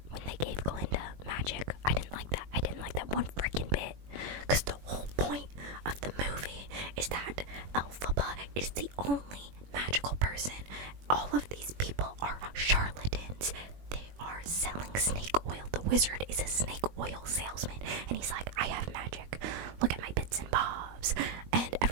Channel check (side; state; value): left; late; 21 ms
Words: when they gave Glinda magic. I didn't like that. I didn't like that one freaking bit. Because the whole point of the movie is that Elphaba is the only magical person. All of these people are charlatans. They are selling snake oil. The wizard is a snake oil salesman, and he's like, I have magic. Look at my bits and bobs. And